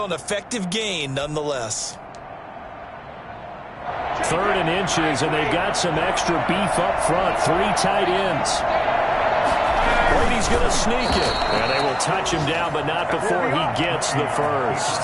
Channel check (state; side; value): identical; both; correlation 1.00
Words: an effective gain nonetheless. Third and inches, and they've got some extra beef up front. 3 tight ends. Brady's going to sneak it. And they will touch him down, but not before he gets the first.